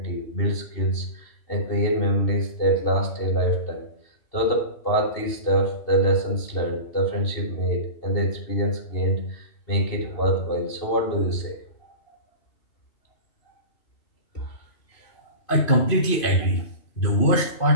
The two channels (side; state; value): right; late; 2.7 ms